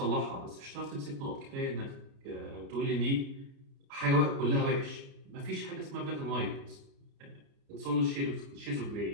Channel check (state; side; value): late; left; 29 ms